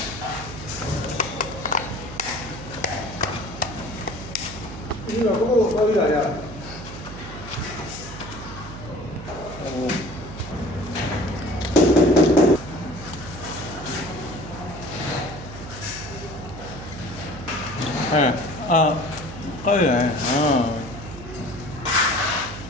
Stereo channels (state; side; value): noise; right; hum, 12 dB below the sound